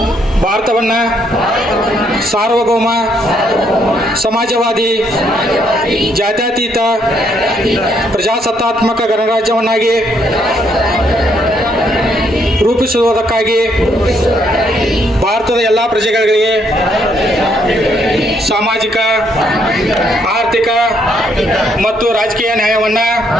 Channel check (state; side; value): normal; both; correlation 0.72